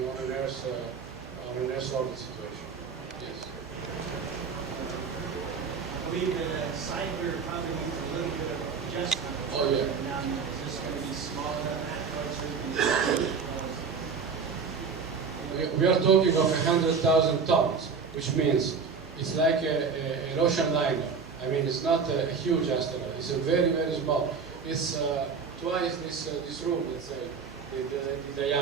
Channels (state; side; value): quieter; left; 5.5 dB